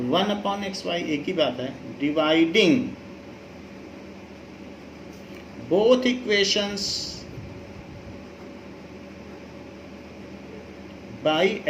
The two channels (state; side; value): identical; both; correlation 1.00